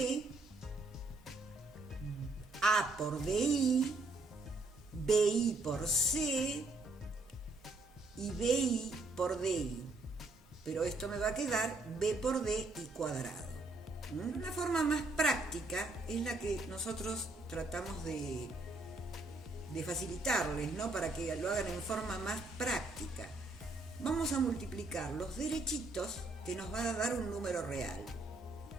a por bi, bi por c y bi por di. Pero esto me va a quedar b por d y cuadrado. Una forma más práctica es la que nosotros tratamos de facilitarles, ¿no? Para que lo hagan en forma más práctica. Vamos a multiplicar los derechitos que nos va a dar un número real.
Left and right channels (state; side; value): quieter; left; 3.0 dB